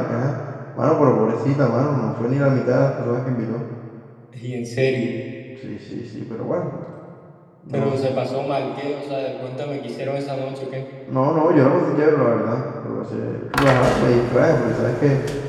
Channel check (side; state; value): both; identical; correlation 1.00